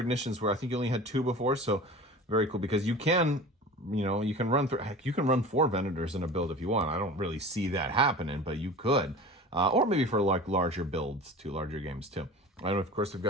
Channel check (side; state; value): both; normal; correlation 0.37